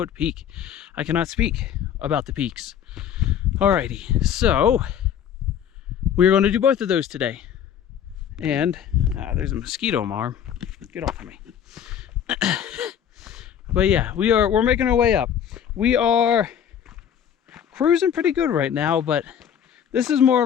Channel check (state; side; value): quieter; right; 8.9 dB